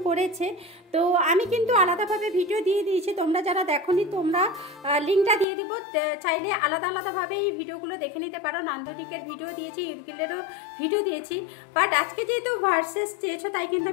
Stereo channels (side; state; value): right; drops out; at 5.5 s